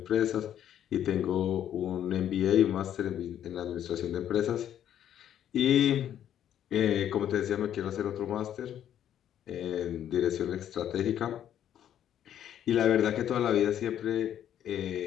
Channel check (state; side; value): quieter; right; 10.5 dB